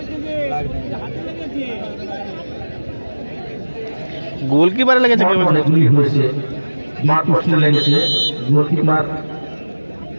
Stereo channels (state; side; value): inverted; both; correlation -1.00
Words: গোল কি বাড়ে লেগেছে, হয়েছে মার পোস্টে লেগেছে। গোলকিপার